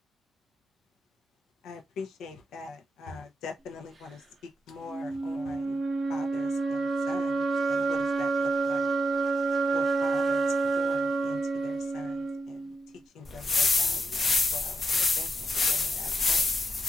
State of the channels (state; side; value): normal; both; correlation 0.83